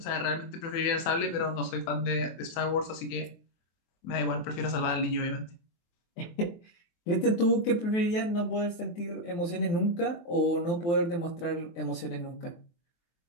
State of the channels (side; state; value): right; late; 24 ms